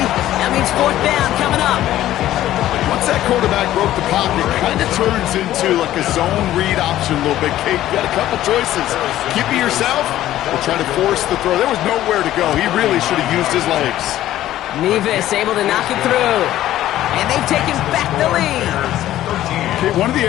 that means fourth down coming up. Once that quarterback broke the pocket, it kind of turns into like a zone read option a little bit. Kate, you got a couple choices. Keep it yourself or try to force the throw. There was nowhere to go. He really should have used his legs. Nevis able to knock it through. And they've taken back the lead. Okay, one of the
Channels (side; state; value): right; quieter; 13.6 dB